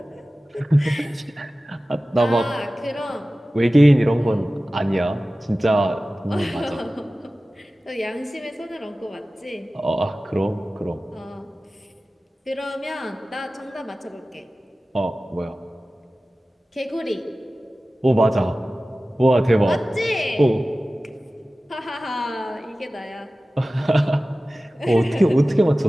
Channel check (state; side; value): normal; both; correlation 0.96